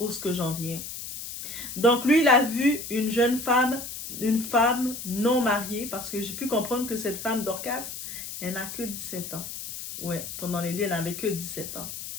j'en viens. Donc lui, il a vu une jeune femme, une femme non mariée, parce que j'ai pu comprendre que cette femme Dorcas, elle n'a que 17 ans. Ouais, pendant les lieux, elle n'avait que 17 ans.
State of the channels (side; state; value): left; noise; hiss, 9 dB below the sound